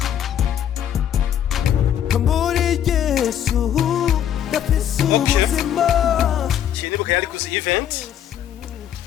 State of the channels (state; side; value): quieter; right; 10.1 dB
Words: Nibuka yari kuzi event.